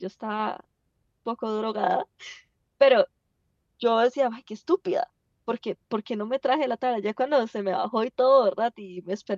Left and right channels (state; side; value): identical; both; correlation 1.00